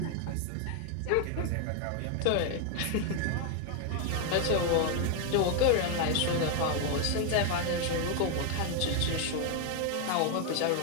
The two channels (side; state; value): both; different; correlation 0.01